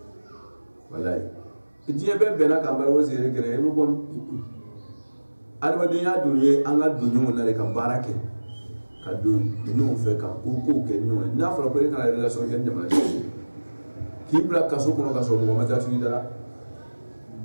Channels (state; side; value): inverted; both; correlation -1.00